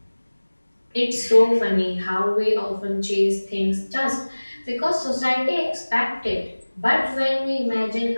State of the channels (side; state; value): both; inverted; correlation -1.00